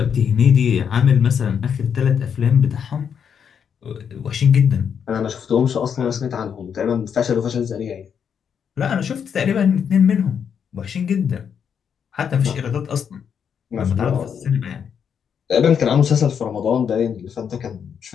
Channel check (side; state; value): right; quieter; 7.5 dB